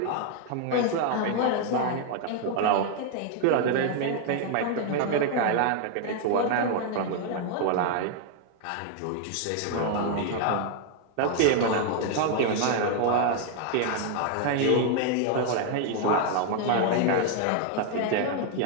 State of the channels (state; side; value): different; both; correlation 0.00